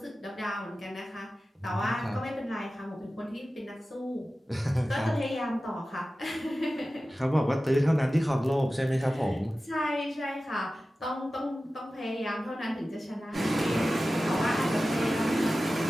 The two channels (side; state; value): both; normal; correlation 0.95